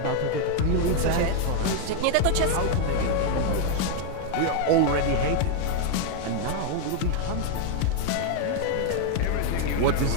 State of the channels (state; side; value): different; both; correlation 0.01